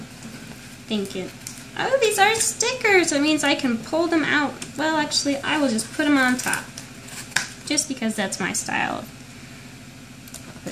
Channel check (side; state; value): both; identical; correlation 1.00